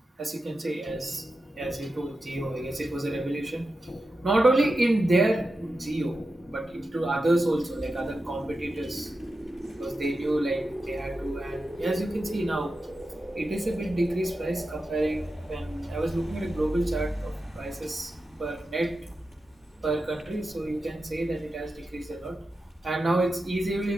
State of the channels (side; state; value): both; normal; correlation 0.91